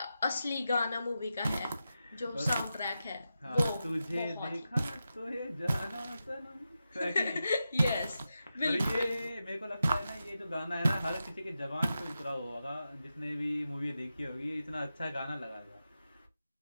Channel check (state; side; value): inverted; both; correlation -0.90